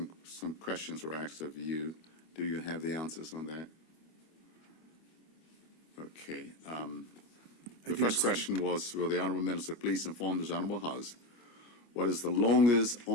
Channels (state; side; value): late; right; 25 ms